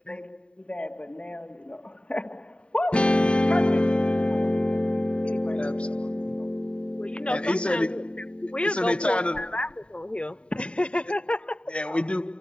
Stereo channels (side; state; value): right; late; 0.055 ms